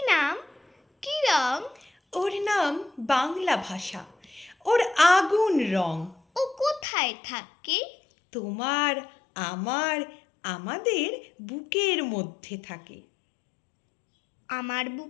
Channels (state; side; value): drops out; right; at 6.9 s